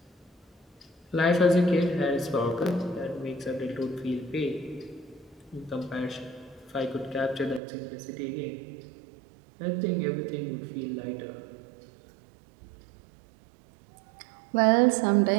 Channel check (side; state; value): left; drops out; at 7.6 s